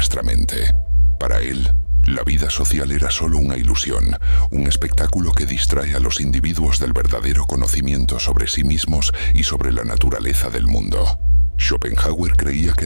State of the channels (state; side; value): inverted; both; correlation -1.00